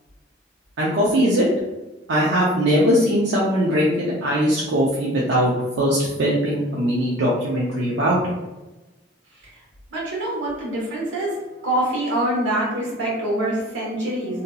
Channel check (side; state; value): both; normal; correlation 0.43